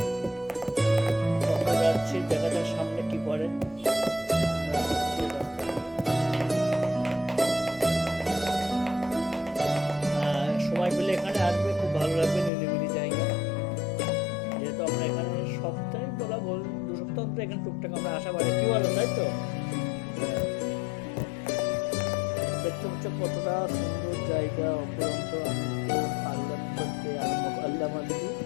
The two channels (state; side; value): drops out; right; at 12.5 s